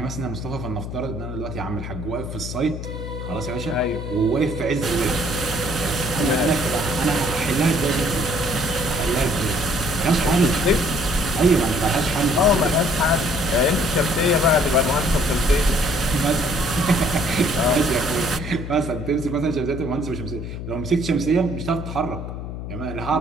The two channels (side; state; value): left; noise; hum, 7 dB below the sound